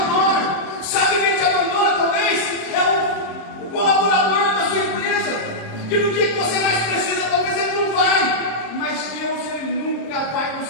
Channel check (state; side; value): late; right; 26 ms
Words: Sabe quem te abandona? Talvez é o colaborador da sua empresa, que no dia que você mais precisa, talvez ele não vai. Mas Deus, Ele nunca vai